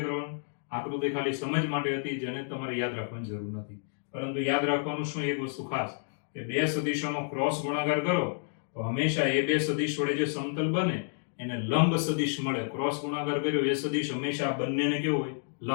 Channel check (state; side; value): silent; right; digital silence